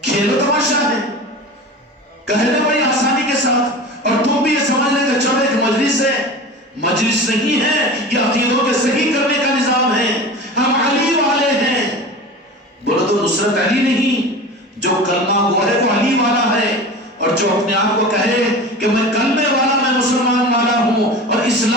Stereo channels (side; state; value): both; normal; correlation 0.33